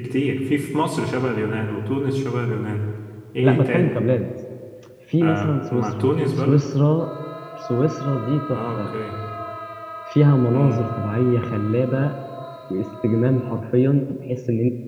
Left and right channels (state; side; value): identical; both; correlation 1.00